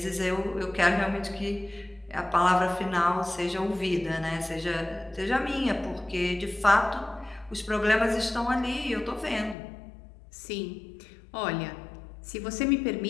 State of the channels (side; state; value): right; drops out; at 9.6 s